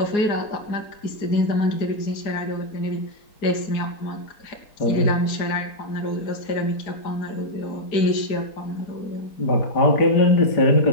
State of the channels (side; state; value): right; late; 4.8 ms